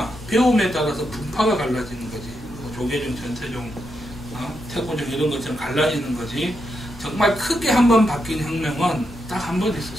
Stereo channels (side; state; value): both; normal; correlation 0.83